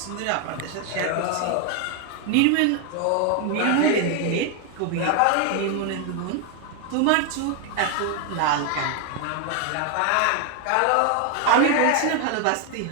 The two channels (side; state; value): both; different; correlation 0.01